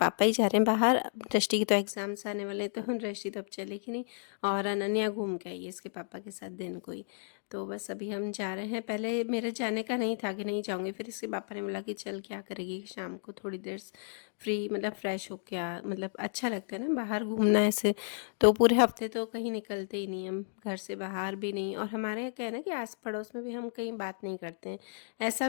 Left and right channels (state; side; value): silent; right; digital silence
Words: ही जा रहे हैं बाहर। दृष्टि की तो एग्ज़ाम्स आने वाले हैं, तो दृष्टि तो अब चलेगी नहीं, और अनन्या घूम के आई है इसके पापा के साथ दिन को ही। तो बस अभी हम जा रहे हैं। पहले मेरे जाने का नहीं था कि नहीं जाऊंगी, फिर इसके पापा ने बोला कि चल क्या करेगी शाम को थोड़ी देर फ्री, मतलब फ्रेश हो के आ, मतलब अच्छा लगता है ना बाहर घूमना ऐसे। तो पूरे हफ्ते तो कहीं निकलते ही नहीं हम, घर से बाहर भी नहीं। और हमारे यहाँ क्या है ना कि आस पड़ोस में भी हम कहीं बात नहीं करते हैं,